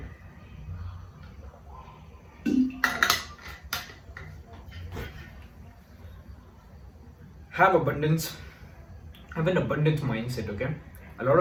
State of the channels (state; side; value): identical; both; correlation 1.00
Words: Have abundance. Have an abundance mindset. Okay. A lot